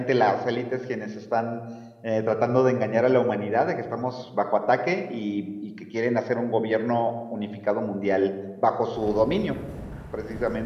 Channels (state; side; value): identical; both; correlation 1.00